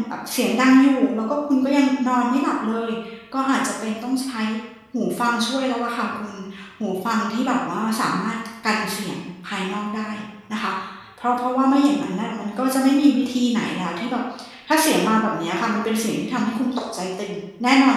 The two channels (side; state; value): both; identical; correlation 1.00